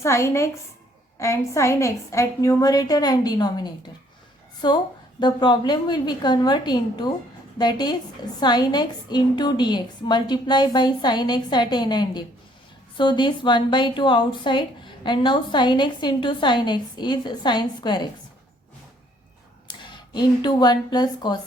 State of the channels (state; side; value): normal; both; correlation 0.63